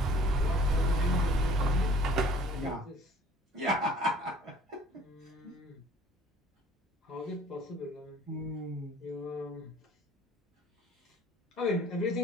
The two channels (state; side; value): normal; both; correlation 0.52